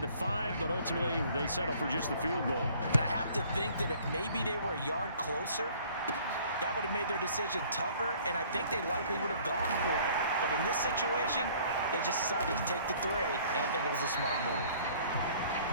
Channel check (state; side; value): inverted; both; correlation -0.55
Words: the 5, but ultimately they settle for just the field goal. And I have to think that if maybe they were a yard closer, that would have made their decision tougher, and I think they likely would have gone for it. But in this situation, they just decided to take the 3, and I think it was a smart move.